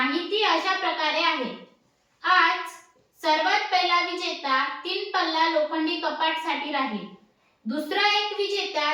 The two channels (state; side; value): identical; both; correlation 1.00